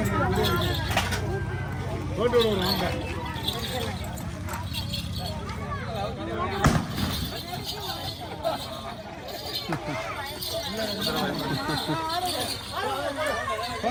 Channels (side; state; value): both; identical; correlation 1.00